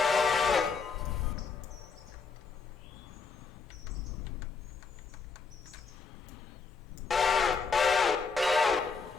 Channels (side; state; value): right; quieter; 4.9 dB